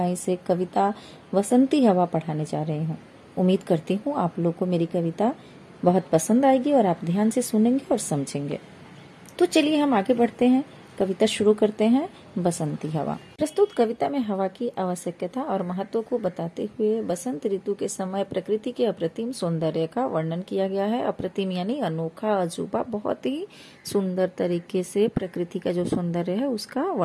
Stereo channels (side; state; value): both; identical; correlation 1.00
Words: से कविता बसंती हवा पढ़ाने जा रही हूँ। उम्मीद करती हूँ आप लोग को मेरी कविता बहुत पसंद आएगी और आप ध्यान से सुनेंगे और समझेंगे। तो चलिए हम आगे बढ़ते हैं, कविता शुरू करते हैं। बसंती हवा। प्रस्तुत कविता में हवा की आवश्यकता और महत्व को बताते हुए बसंत ऋतु के समय प्रकृति के अप्रतिम सौंदर्य का वर्णन किया गया है। अप्रतिम यानी अनोखा, अजूबा, बहुत ही सुंदर तरीके से प्रकृति का जो सौंदर्य है उसका